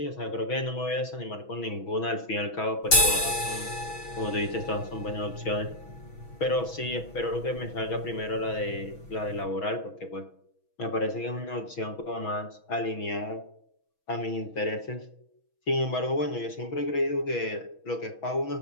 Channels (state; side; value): late; right; 6.2 ms